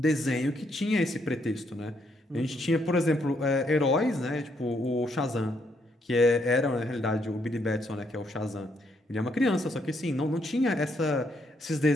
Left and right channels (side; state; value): both; normal; correlation 0.74